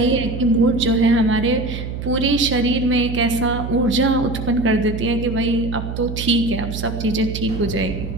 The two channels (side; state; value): right; noise; hum, 6 dB below the sound